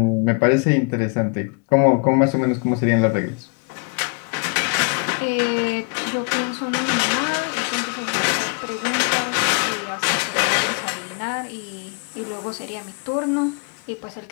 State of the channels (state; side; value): quieter; right; 33.4 dB